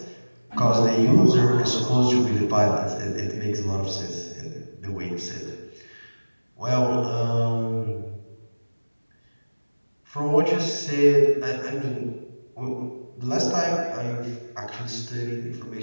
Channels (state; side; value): inverted; both; correlation -1.00